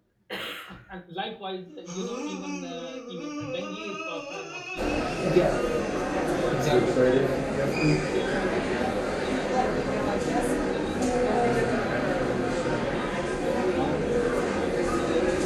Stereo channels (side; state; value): both; identical; correlation 1.00